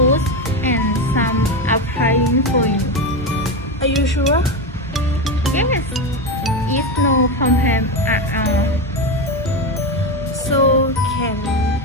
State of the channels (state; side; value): normal; both; correlation 0.14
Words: and some applying for you. Are you sure? Yes, it's no problem at all. So can